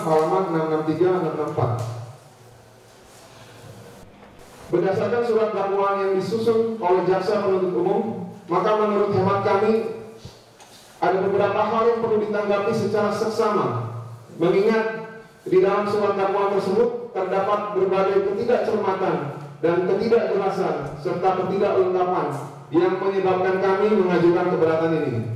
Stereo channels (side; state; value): both; identical; correlation 1.00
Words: halaman 663-664. Berdasarkan surat dakwaan yang disusun oleh jaksa penuntut umum, maka menurut hemat kami ada beberapa hal yang perlu ditanggapi secara seksama, mengingat di dalam surat dakwaan tersebut terdapat berbagai ketidakcermatan dan ketidakjelasan serta ketidaklengkapan yang menyebabkan kami mengajukan keberatan ini.